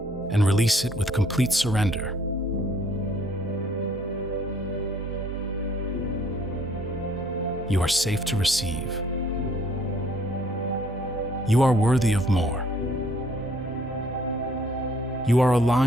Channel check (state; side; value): normal; both; correlation 0.61